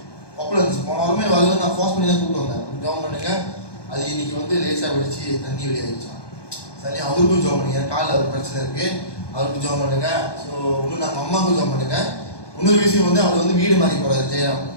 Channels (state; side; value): late; right; 1.2 ms